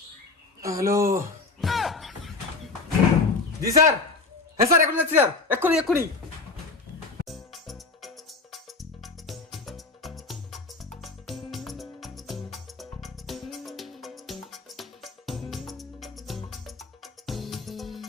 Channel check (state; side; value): quieter; right; 3.9 dB